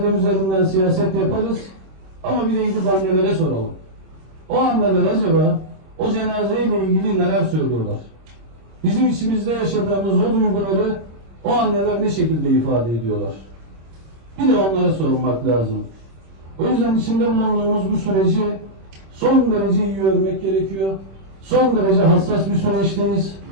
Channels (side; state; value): left; late; 26 ms